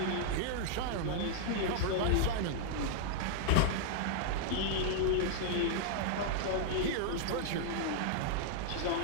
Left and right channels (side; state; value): both; different; correlation -0.01